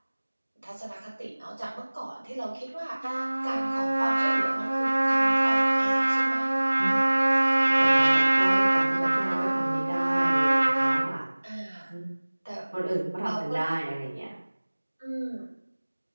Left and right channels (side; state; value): both; inverted; correlation -1.00